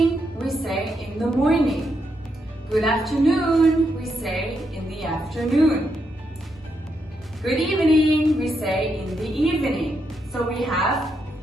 we say in the morning. Good afternoon, we say in the afternoon. Good evening, we say in the evening. So we have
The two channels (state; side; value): normal; both; correlation 0.81